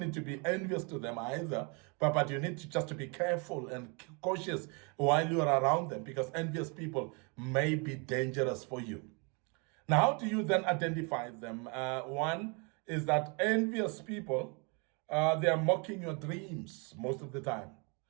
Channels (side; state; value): left; quieter; 33.1 dB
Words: to be envious to them either. But you need to just to be careful and cautious while you are around them, because envious people may be dangerous for you. Now, how do you then identify them? One is that envious people, they are mocking your dreams most of the time.